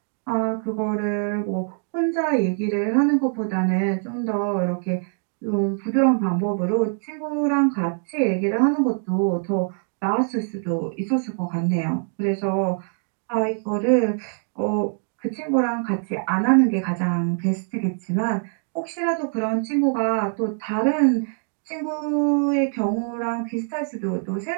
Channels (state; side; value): silent; left; 58 dB below the other